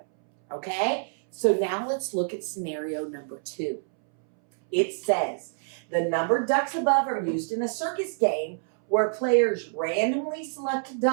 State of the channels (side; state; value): left; silent; 60 dB below the other